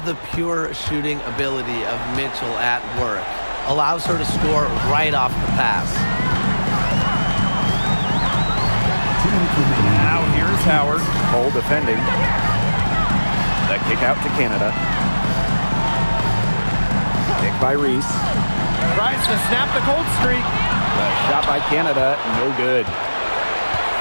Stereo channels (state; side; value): inverted; both; correlation -1.00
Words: the pure shooting ability of Mitchell at work. Allows her to score right off the pass. Now here's Howard. Cole defending. The kick out to Canada. Kick by Reese. Tries to snap the cold streak. The shot by Canada, no good.